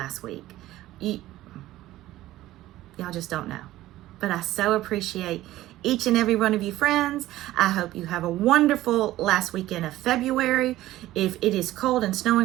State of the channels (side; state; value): left; quieter; 15.5 dB